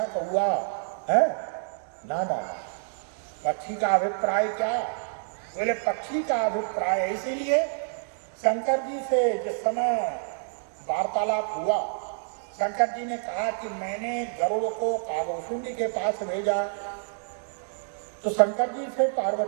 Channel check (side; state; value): left; silent; digital silence